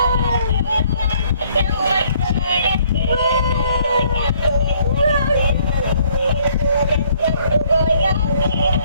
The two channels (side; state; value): both; inverted; correlation -0.63